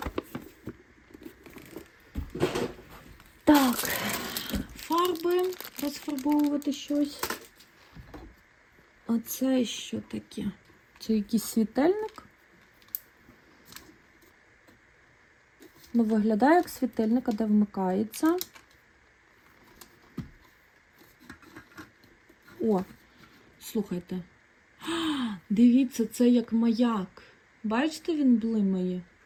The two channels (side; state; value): both; identical; correlation 1.00